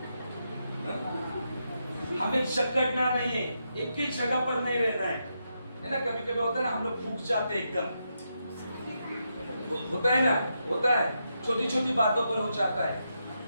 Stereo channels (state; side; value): inverted; both; correlation -0.83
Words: हमें जकड़ना नहीं है, एक ही जगह पर नहीं रहना है ना। कभी कभी होता है ना, हम लोग फूक जाते हैं एकदम, होता है ना, होता है, छोटी छोटी बातों पर हो जाता है,